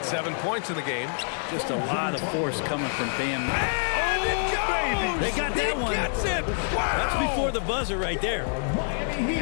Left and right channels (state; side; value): silent; right; 60 dB below the other